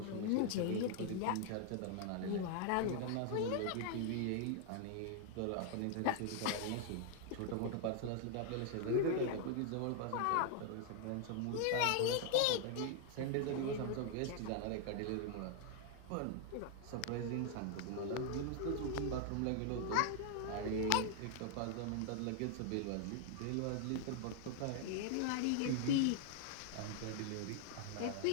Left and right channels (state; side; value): different; both; correlation 0.00